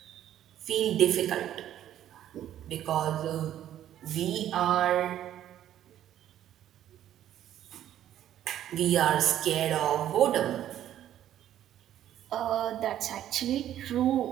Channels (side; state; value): left; quieter; 11.6 dB